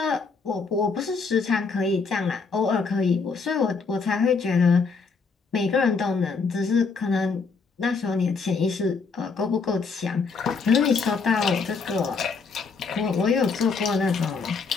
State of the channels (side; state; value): right; quieter; 4.8 dB